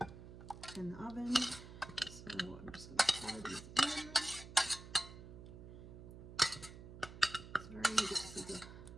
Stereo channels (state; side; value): noise; right; hum, 14 dB below the sound